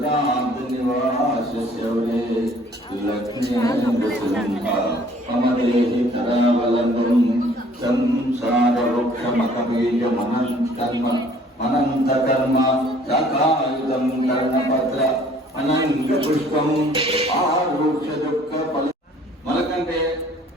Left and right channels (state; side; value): normal; both; correlation 0.56